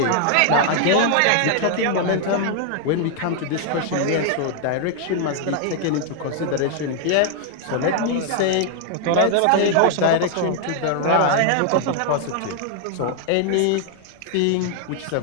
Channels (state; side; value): different; both; correlation 0.00